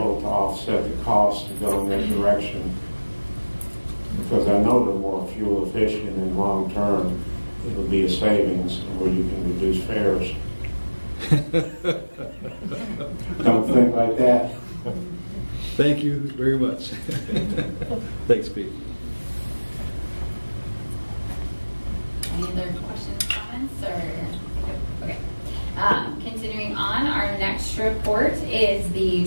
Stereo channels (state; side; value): inverted; both; correlation -1.00